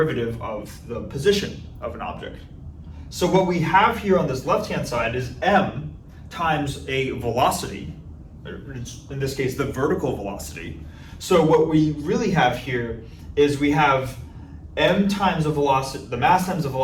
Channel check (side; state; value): both; identical; correlation 1.00